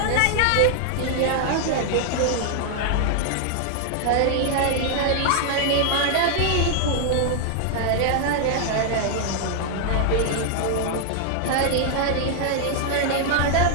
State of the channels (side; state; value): both; different; correlation 0.00